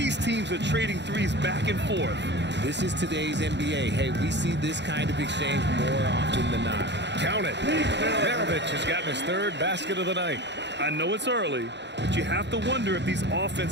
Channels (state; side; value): late; left; 0.51 ms